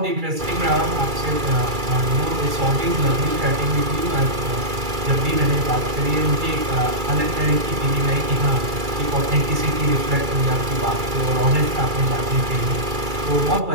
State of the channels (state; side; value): late; left; 2.3 ms